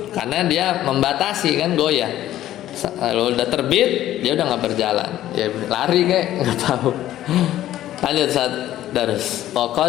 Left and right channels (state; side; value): quieter; right; 13.2 dB